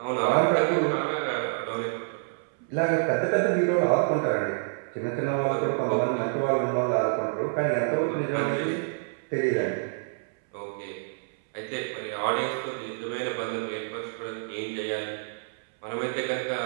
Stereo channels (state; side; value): silent; left; 60 dB below the other